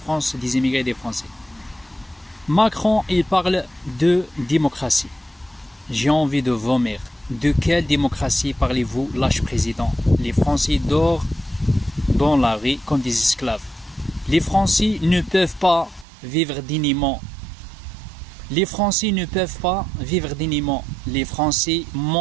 des immigrés et des Français. Macron, il parle de démocratie. J'ai envie de vomir. De quelle démocratie parlez-vous, lâche président? Les Français dorment dans la rue comme des esclaves. Les Français ne peuvent pas vivre dignement. Les Français ne peuvent pas vivre dignement. Les Français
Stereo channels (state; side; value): drops out; left; at 16.1 s